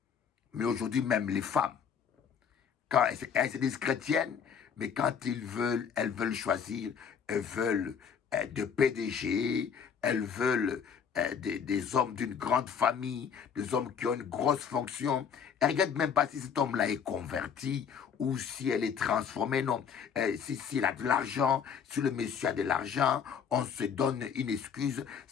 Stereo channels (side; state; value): right; quieter; 7.2 dB